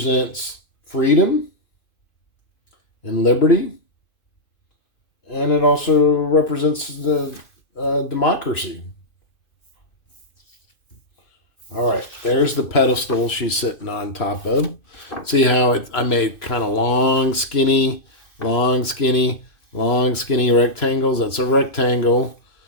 freedom and liberty. And it also represents the democracy. All right, there's the pedestal she's sitting on top of. See how I made kind of long, skinny, long, skinny, long, skinny rectangles? That's a rectangle.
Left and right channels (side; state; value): right; late; 2.5 ms